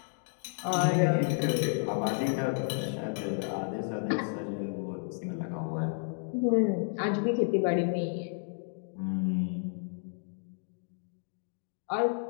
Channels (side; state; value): right; silent; 57 dB below the other